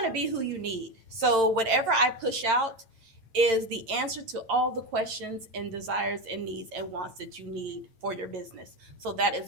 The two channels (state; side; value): late; left; 8.9 ms